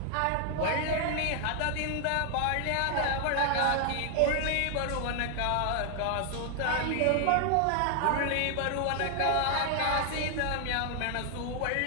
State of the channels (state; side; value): different; both; correlation 0.00